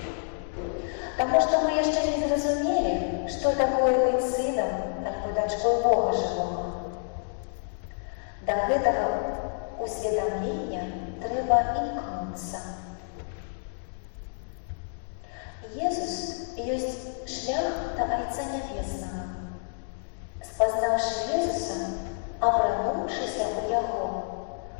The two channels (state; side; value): silent; right; digital silence